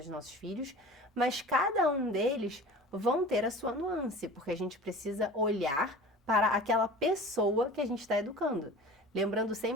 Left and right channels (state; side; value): normal; both; correlation 0.39